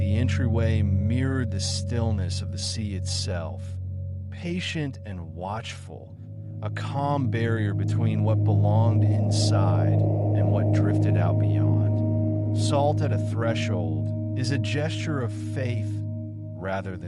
entryway mirrored the stillness of the sea itself, patient and watchful, a calm barrier between what belonged inside and what drifted out beyond. Salt at a threshold is a gesture of faith rather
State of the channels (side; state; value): both; identical; correlation 1.00